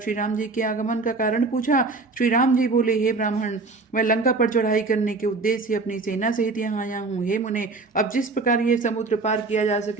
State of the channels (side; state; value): left; quieter; 3.8 dB